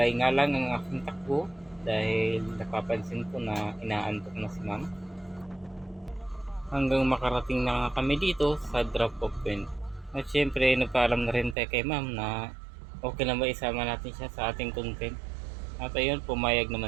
nga lang ang aking takbo dahil napapansin ko na inaantok na si ma'am. Hanggang makarating na kami dito sa drop off point. At syempre nagpaalam na rin tayo kay ma'am na okay lang ba isama natin siya sa ating content. At ayun, pumayag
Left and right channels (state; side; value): drops out; left; at 11.6 s